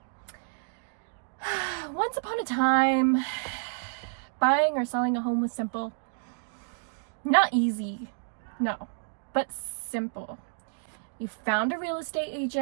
Once upon a time, buying or selling a home was simple. Not easy, no, but simple. You found a real estate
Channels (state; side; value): silent; left; digital silence